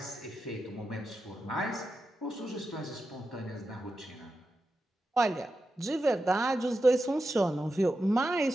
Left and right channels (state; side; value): normal; both; correlation 0.89